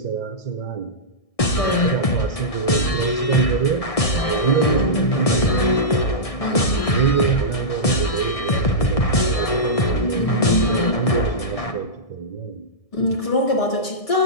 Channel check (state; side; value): late; right; 1.6 ms